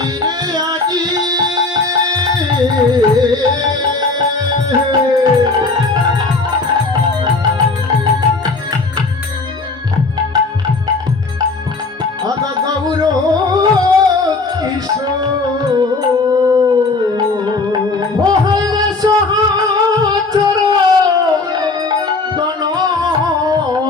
আজি আদা গৌর কিশোর সহচর গণ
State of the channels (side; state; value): right; quieter; 3.6 dB